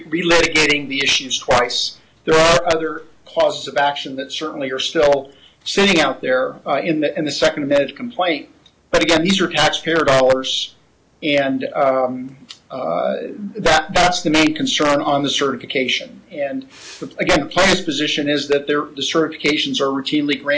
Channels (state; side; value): identical; both; correlation 1.00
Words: the issues twice. There are other causes of action that certainly are still sitting out there in the second amended complaint. But again, these are taxpayer dollars, and that's the main concern on the certification. And again, the plaintiff's position is that the certifications are routinely